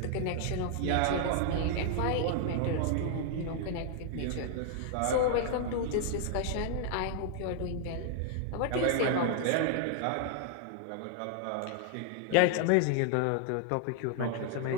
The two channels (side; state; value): both; different; correlation 0.00